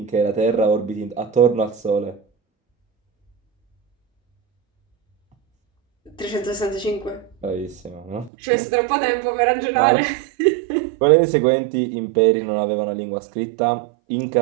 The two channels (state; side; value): drops out; left; at 8.3 s